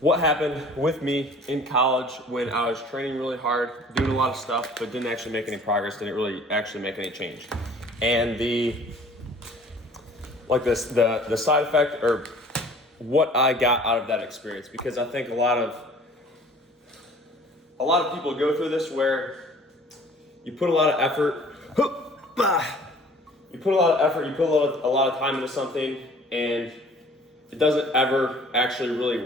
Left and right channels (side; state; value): both; normal; correlation 0.50